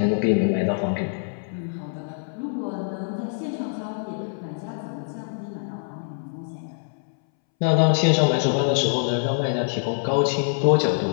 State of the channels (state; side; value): silent; right; 62 dB below the other